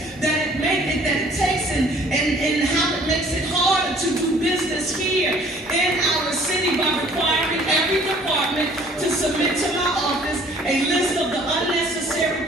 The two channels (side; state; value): both; normal; correlation 0.55